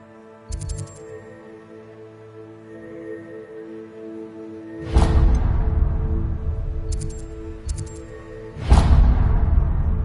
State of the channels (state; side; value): identical; both; correlation 1.00